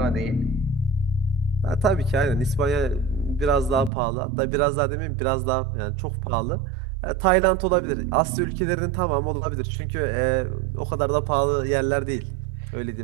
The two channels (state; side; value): drops out; left; at 3.9 s